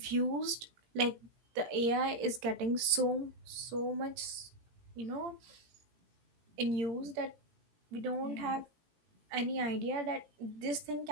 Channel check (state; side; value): late; left; 17 ms